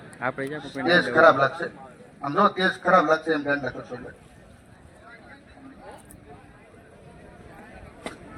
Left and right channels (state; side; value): identical; both; correlation 1.00